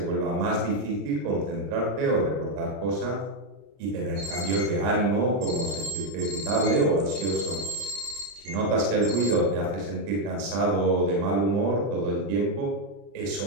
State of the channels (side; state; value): left; late; 31 ms